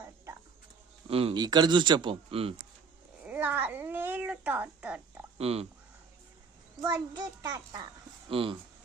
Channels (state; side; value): quieter; left; 5.2 dB